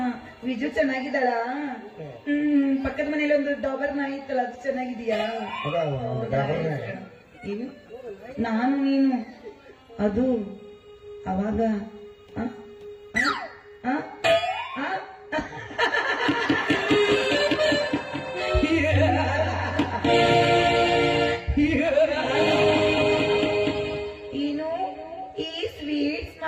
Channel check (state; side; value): identical; both; correlation 1.00